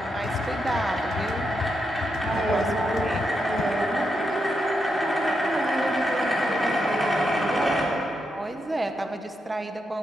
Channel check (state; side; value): normal; both; correlation 0.83